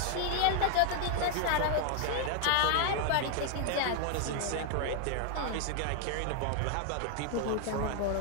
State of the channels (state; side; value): different; both; correlation 0.00